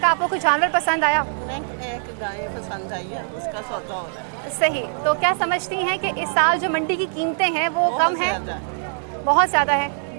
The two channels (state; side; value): silent; left; 61 dB below the other